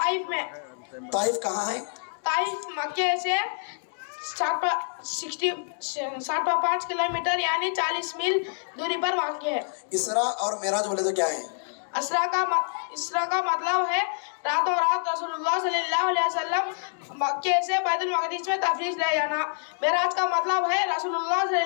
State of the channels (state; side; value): silent; right; digital silence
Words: میں۔ طائف کہاں ہے؟ طائف مکے سے 65 کلومیٹر یعنی 40 میل دوری پر واقع ہے۔ اسراء اور معراج بولے تو کیا ہے؟ اسراء کا مطلب ہے راتوں رات رسول اللہ صلی اللہ علیہ وسلم مکے سے بیت المقدس میں تفریح لے جانا۔ معراج کا مطلب ہے رسول اللہ صلی